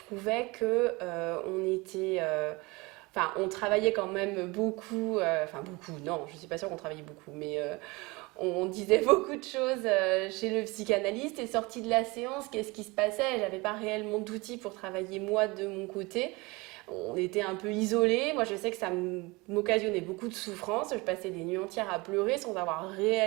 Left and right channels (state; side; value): quieter; left; 24.4 dB